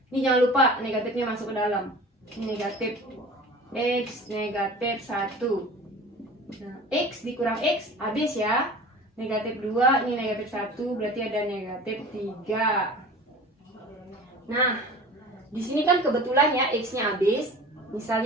Ini jangan lupa negatifnya masuk ke dalam. Ini negatif X negatif 1. Nah, X dikurang X habis ya. Negatif 2, ini negatif 1, berarti ada negatif 3. Nah, di sini kan kebetulan ya X-nya habis.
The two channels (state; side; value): normal; both; correlation 0.40